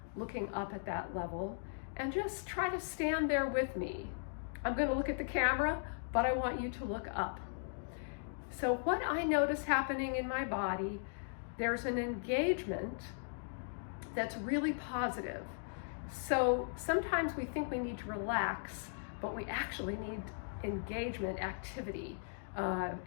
looking up at that level. And just try to stand there with me. I'm going to look at the camera, but I want you to look up. So what I notice happening in my body, there's an engagement that's really positive. So sometimes we think we need to relax, but we actually need engagement, activity, and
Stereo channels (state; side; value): silent; right; digital silence